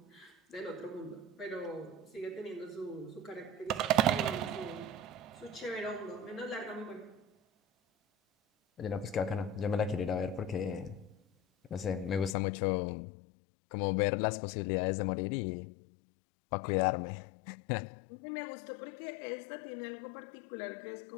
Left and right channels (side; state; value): right; drops out; at 12.4 s